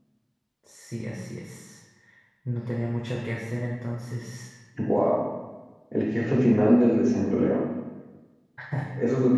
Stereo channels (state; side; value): identical; both; correlation 1.00